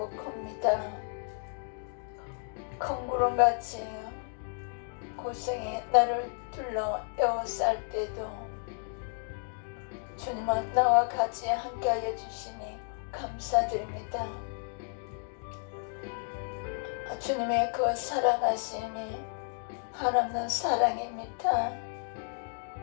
큽니다. 큰 구름같이 고생이 나를 둘러 에워쌀 때도 주님은 나와 같이 함께하여 주시니 감사드립니다. 주님의 그 사랑하심이 한없는 사랑입니다.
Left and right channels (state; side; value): silent; right; 56 dB below the other